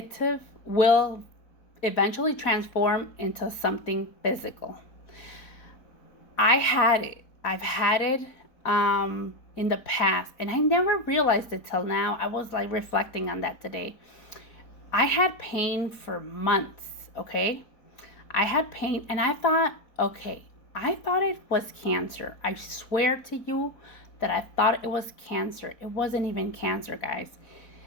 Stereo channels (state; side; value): late; right; 4.2 ms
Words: will eventually transform into something physical. I've had it in the past, and I never realized it till now. I was like reflecting on that today. I had pain for months, okay? I had pain, and I thought it was cancer. I swear to you that I thought it was cancer. It wasn't even cancer, guys.